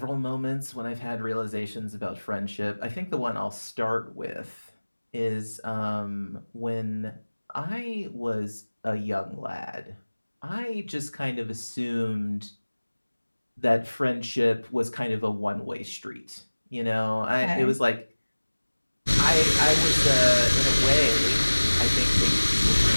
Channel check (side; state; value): both; inverted; correlation -1.00